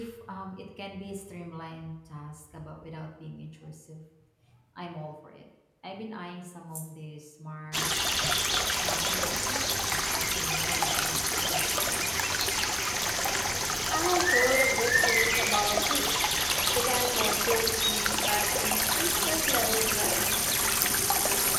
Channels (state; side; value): identical; both; correlation 1.00